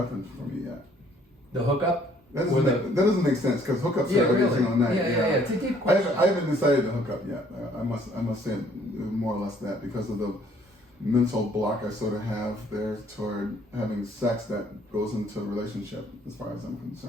for me yet. The hookup? That Or doesn't make sense because hookups Yeah, are every really. single night. Yeah. It's a deep I question. haven't decided to hook up yet. I must say more or less that because of the mental block I sort of have there toward having sex that goes into a relationship as far as I'm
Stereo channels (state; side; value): normal; both; correlation 0.61